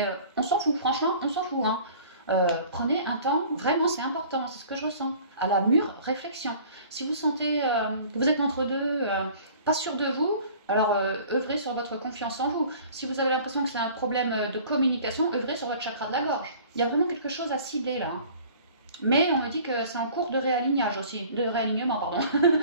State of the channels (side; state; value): both; inverted; correlation -0.48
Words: on s'en fout, franchement, on s'en fout. Hein. Prenez un temps, vraiment, c'est important, c'est ce que je ressens, à la mûre réflexion. Si vous sentez que vous êtes entre deux, pas sûr de vous, alors œuvrez sur votre confiance en vous. Si vous avez l'impression que c'est un problème de communication, œuvrez sur votre chakra de la gorge. Il y a vraiment quelque chose à cibler là. Hein. Mais on me dit que c'est en cours de réalignage aussi, de réalignement, pardon.